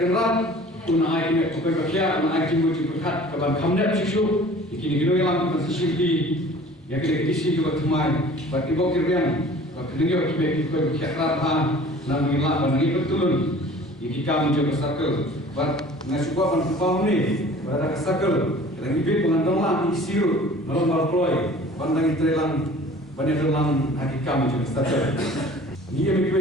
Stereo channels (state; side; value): normal; both; correlation 0.47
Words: pun ai ini bukan kerja pun ai timbul berkat kawan kamnet isu kini kini yang masih di yang kita isi juga teman bagi bokir yang kedua kita berkat apa nang milah banang betul iki kam jo circle bat ngasukwa pan pau ni pada circle dan ibe pengandong lah isiru malam ploy pandang trelang banyalang aki kam jo circle ni yang